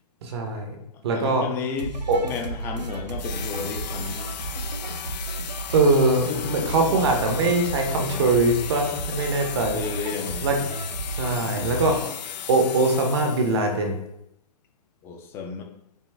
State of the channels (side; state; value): both; normal; correlation -0.20